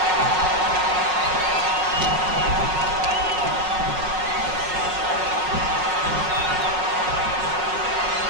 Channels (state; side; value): late; left; 5.4 ms